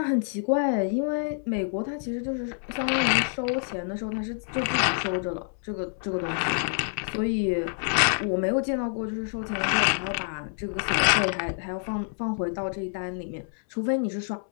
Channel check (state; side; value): silent; right; 60 dB below the other